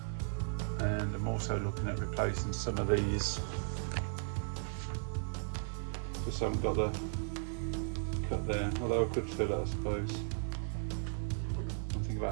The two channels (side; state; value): left; silent; digital silence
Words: And I'm also looking at replacing some of these. Just haven't got the cut there, although I could fill it, I suppose. I'm thinking